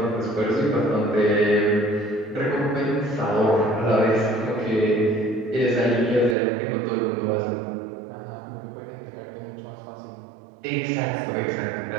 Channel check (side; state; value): left; drops out; at 6.4 s